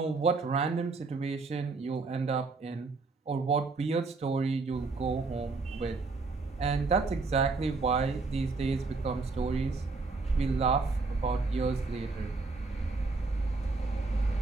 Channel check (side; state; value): left; quieter; 3.9 dB